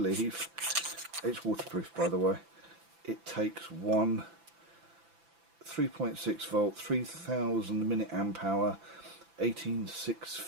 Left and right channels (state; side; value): late; left; 5.9 ms